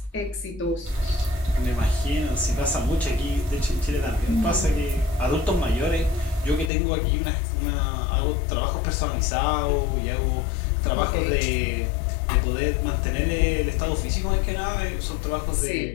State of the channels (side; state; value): right; drops out; at 6.7 s